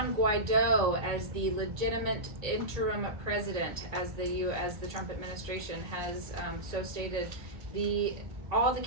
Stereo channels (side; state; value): left; late; 1.8 ms